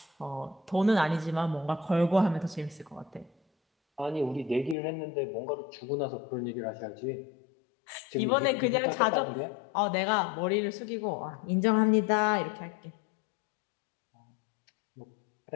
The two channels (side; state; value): right; drops out; at 4.8 s